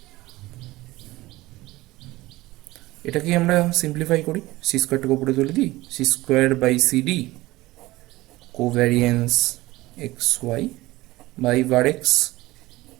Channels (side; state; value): left; quieter; 18.8 dB